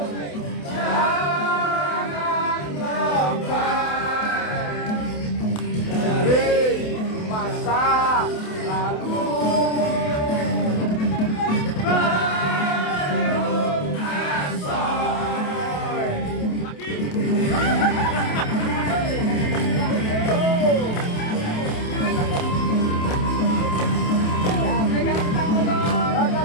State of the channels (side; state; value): right; late; 28 ms